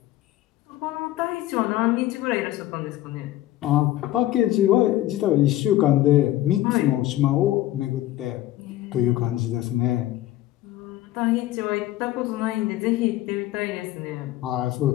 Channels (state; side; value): quieter; right; 14.9 dB